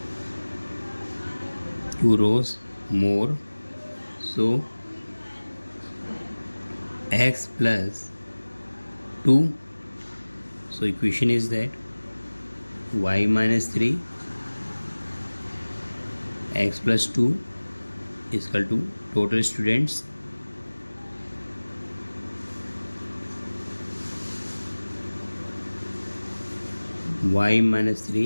Two rows more. So x plus 2. So equation is that y minus 3 x plus 2 is equal to total students y minus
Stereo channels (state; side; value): inverted; both; correlation -1.00